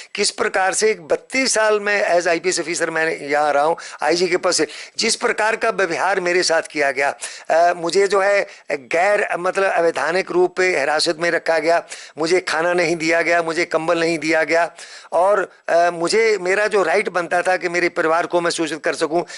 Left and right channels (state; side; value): identical; both; correlation 1.00